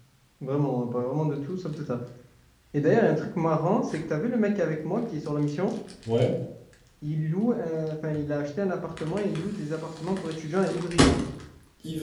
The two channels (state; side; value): identical; both; correlation 1.00